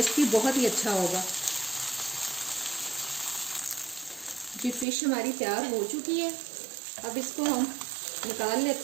भी बहुत ही अच्छा होगा। जी फिश हमारी तैयार हो चुकी है। अब इसको हम निकाल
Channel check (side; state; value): left; drops out; at 4.9 s